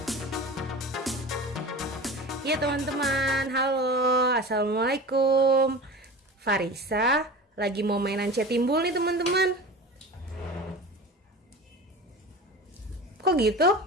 iya teman-teman, halo, assalamualaikum. Farisa lagi mau mainan cetimbul nih teman-teman. Kok gitu?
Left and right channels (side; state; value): both; normal; correlation 0.34